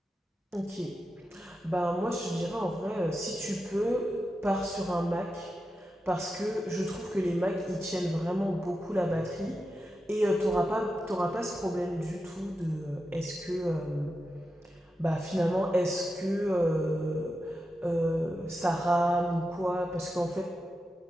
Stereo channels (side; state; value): both; normal; correlation 0.89